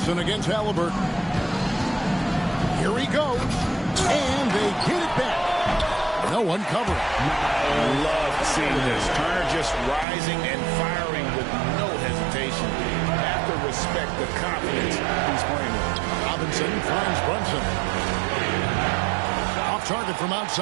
against Halliburton. Here he goes. And they get it back. No one covering. I love seeing this. Turner just rising and firing with no hesitation. Have to respect the confidence he's playing with. Robinson finds Brunson. Off target from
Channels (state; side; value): drops out; left; at 10.1 s